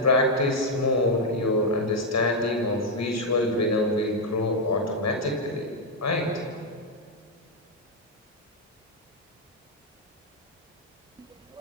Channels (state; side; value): normal; both; correlation 0.00